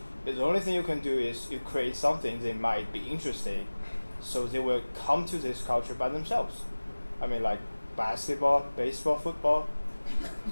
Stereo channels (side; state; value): both; inverted; correlation -1.00